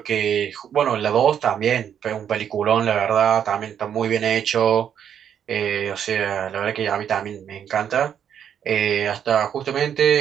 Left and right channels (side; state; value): left; quieter; 8.8 dB